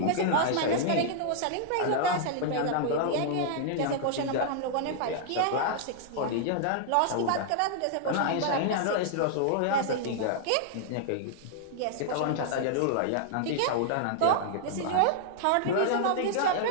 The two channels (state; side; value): different; both; correlation -0.01